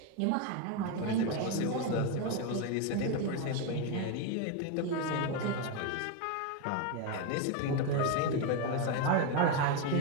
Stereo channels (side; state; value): both; different; correlation 0.02